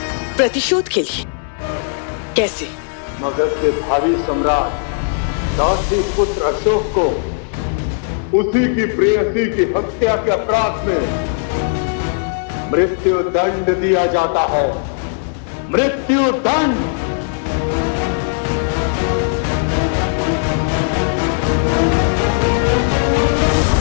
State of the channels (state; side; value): silent; right; 67 dB below the other